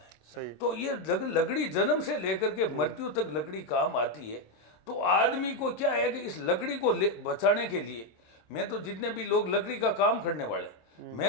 है। सही। तो ये लकड़ी जन्म से लेकर के मृत्यु तक लकड़ी काम आती है। तो आदमी को क्या है कि इस लकड़ी को बचाने के लिए, मैं तो जितने भी लोग लकड़ी का काम करने वाले,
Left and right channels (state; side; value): late; right; 26 ms